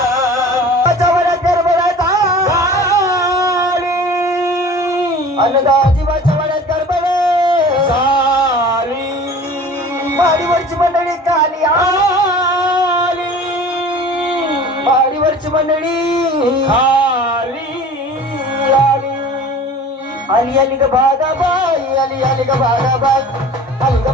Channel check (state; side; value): normal; both; correlation 0.42